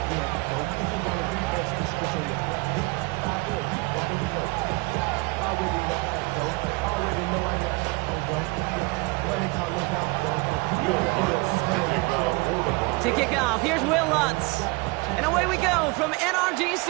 To kick off, here's Will Lutz. And away we go from NRG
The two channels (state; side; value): quieter; left; 26.3 dB